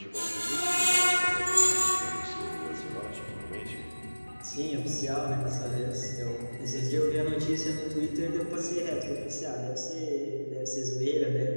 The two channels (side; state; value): both; inverted; correlation -1.00